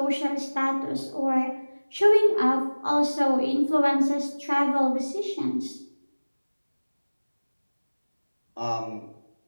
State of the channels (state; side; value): inverted; both; correlation -1.00